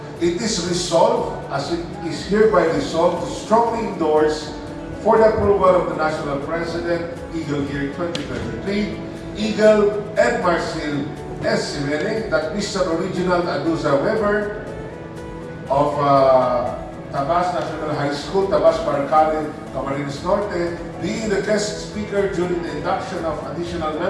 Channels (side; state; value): both; identical; correlation 1.00